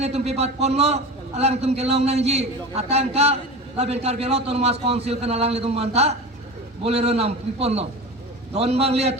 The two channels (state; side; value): normal; both; correlation 0.30